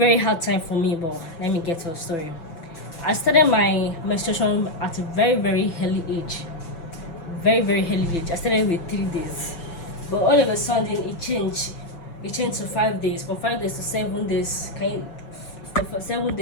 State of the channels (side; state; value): right; late; 6.0 ms